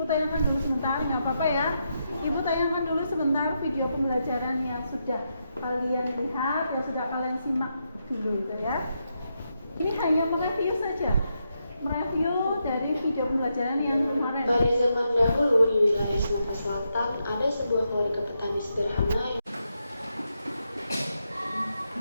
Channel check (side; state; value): both; inverted; correlation -0.83